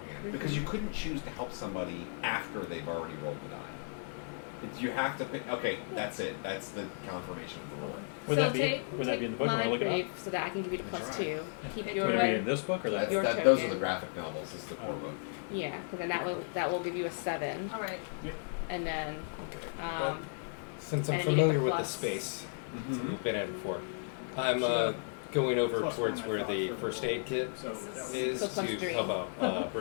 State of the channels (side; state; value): right; silent; 55 dB below the other